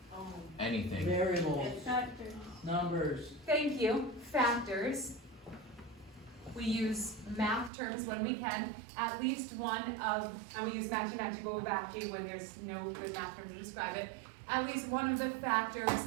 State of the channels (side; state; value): left; drops out; at 7.7 s